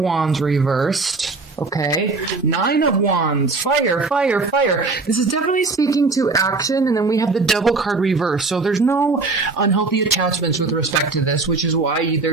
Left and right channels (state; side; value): quieter; left; 3.8 dB